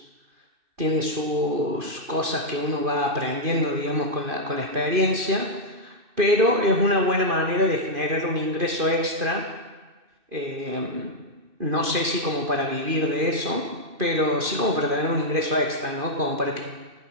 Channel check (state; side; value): late; left; 2.6 ms